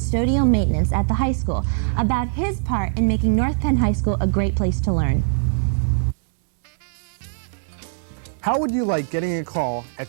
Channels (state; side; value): silent; left; digital silence